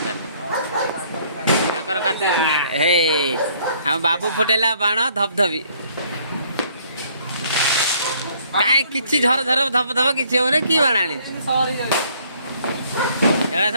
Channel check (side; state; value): both; inverted; correlation -0.62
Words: कार्तिक पूर्णिमा हे आम बाबू फुटेला बाण धपधपी कहीं किसी झर झर धप धप किसी हो कि बाण आनी